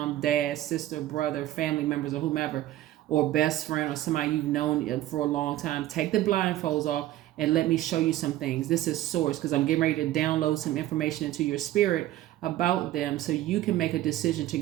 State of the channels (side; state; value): left; quieter; 14.4 dB